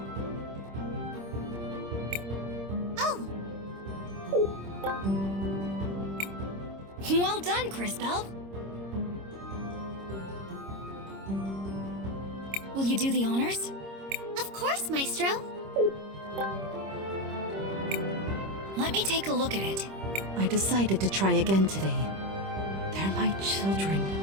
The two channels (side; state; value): left; late; 26 ms